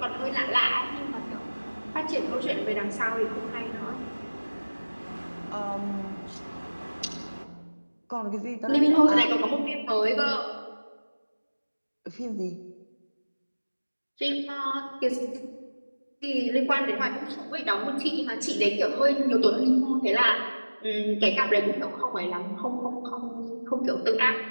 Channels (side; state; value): both; inverted; correlation -1.00